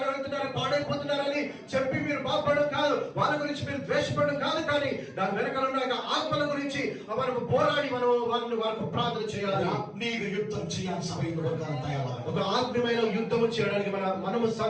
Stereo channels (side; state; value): both; identical; correlation 1.00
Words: అంటున్నారు పాడైపోతున్నారని చెప్పి మీరు బాధపడడం కాదు, వాళ్ళ గురించి మీరు ద్వేషపడడం కాదు, కానీ దాని వెనకాల ఉన్న ఆత్మల గురించి మనకు పోరాడి మనం వాళ్ళకు ప్రార్థన చేయాలి. ఆత్మీయ యుద్ధం చేయాలి. సభలో ఒక ఆత్మీయమైన యుద్ధం చేయడానికి మనము